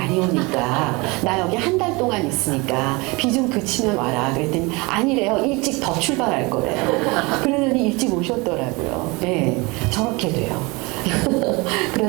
오니까 나 여기 한 달 동안 있으니까 비 좀 그치면 와라. 그랬더니 아니래요. 일찍 더 출발할 거래요. 그러더니 일찍 오셨더라고요. 네, 저렇게 돼요.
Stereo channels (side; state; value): left; quieter; 25.7 dB